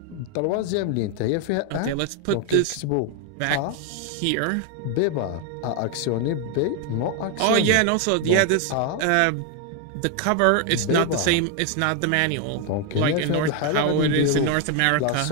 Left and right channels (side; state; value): both; different; correlation 0.01